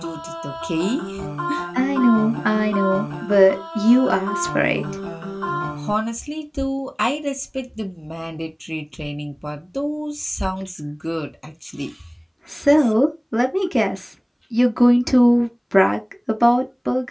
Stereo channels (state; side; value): identical; both; correlation 1.00